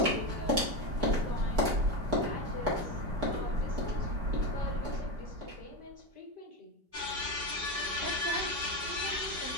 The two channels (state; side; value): late; left; 5.1 ms